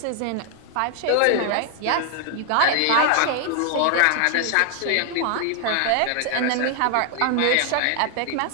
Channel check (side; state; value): both; different; correlation 0.00